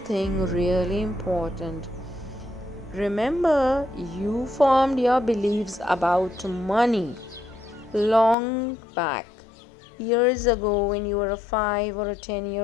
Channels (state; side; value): drops out; right; at 8.3 s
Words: really important. Remember, you formed your beliefs about money long back, years ago when you were a 5 or a